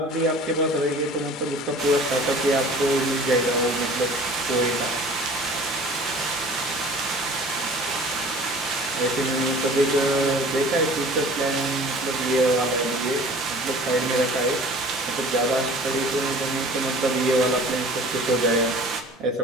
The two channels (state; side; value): normal; both; correlation 0.46